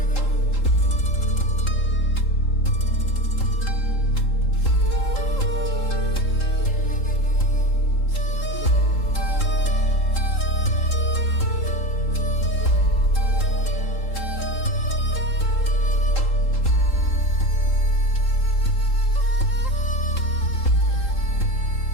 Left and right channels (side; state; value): right; late; 3.7 ms